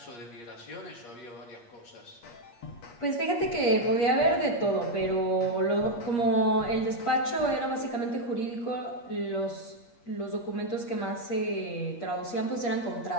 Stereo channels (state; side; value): late; right; 8.5 ms